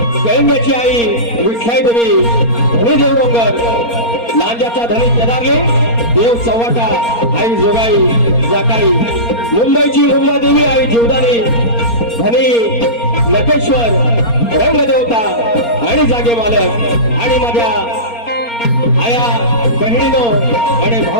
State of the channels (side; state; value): right; late; 4.3 ms